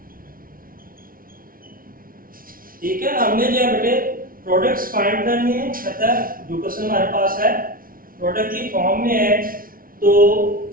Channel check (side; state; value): left; late; 0.42 ms